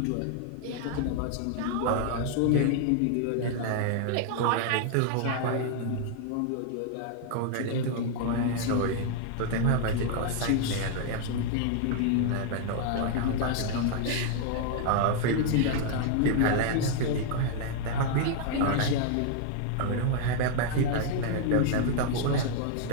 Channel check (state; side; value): different; both; correlation 0.00